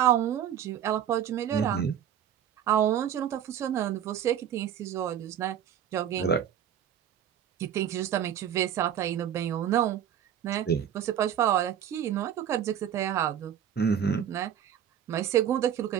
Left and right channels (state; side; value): quieter; left; 9.7 dB